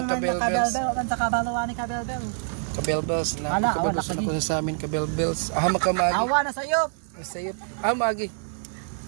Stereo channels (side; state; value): left; silent; 55 dB below the other